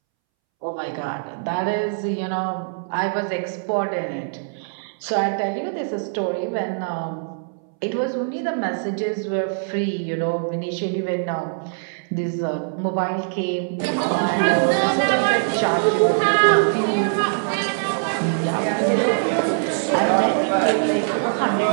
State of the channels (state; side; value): silent; left; 64 dB below the other